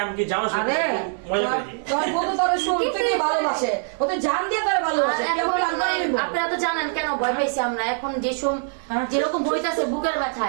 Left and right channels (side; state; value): left; silent; 63 dB below the other